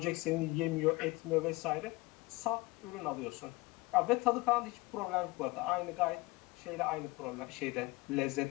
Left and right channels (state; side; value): quieter; right; 22.1 dB